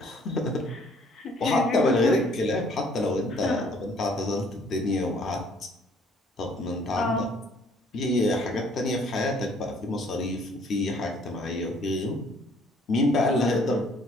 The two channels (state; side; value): normal; both; correlation 0.60